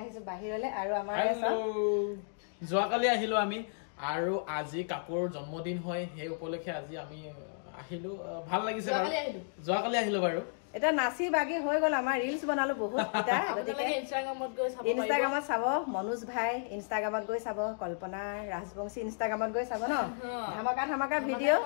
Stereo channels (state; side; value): silent; right; digital silence